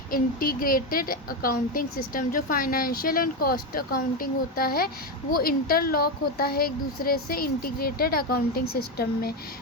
integrated accounting system. जो फाइनेंशियल एंड कॉस्ट अकाउंटिंग होता है वो इंटरलॉक होता है एक दूसरे से इंटीग्रेटेड अकाउंटिंग सिस्टम में।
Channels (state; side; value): normal; both; correlation 0.12